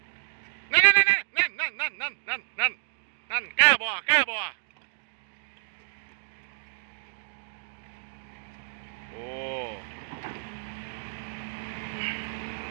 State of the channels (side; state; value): left; silent; digital silence